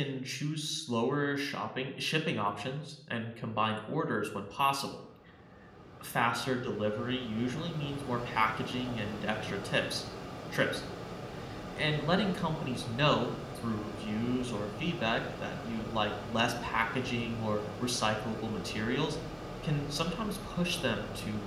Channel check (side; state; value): both; identical; correlation 1.00